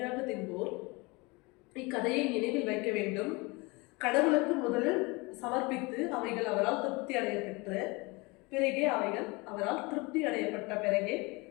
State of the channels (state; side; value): quieter; right; 25.7 dB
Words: தின்போர் இக்கதையை நினைவில் வைக்க வேண்டும். கடவுளுக்கு முதலில் சமர்ப்பித்து அவைகள் அவரால் திருப்தி அடைய பெற்ற பிறகே